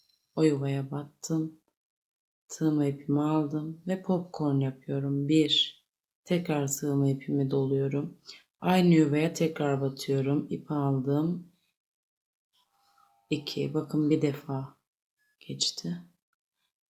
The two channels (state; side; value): identical; both; correlation 1.00